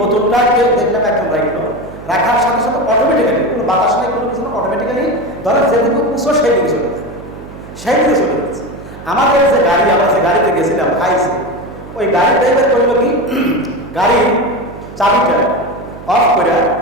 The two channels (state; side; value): noise; right; hum, 15 dB below the sound